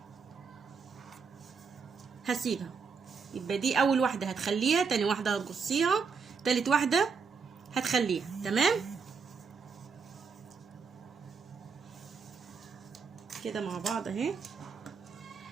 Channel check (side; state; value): left; quieter; 5.4 dB